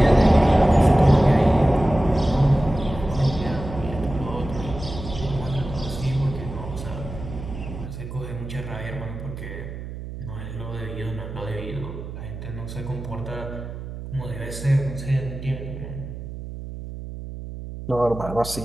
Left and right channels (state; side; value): noise; right; hum, 10 dB below the sound